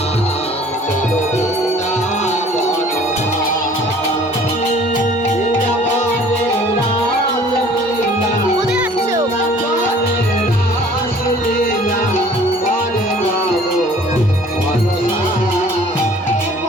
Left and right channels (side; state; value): both; normal; correlation 0.52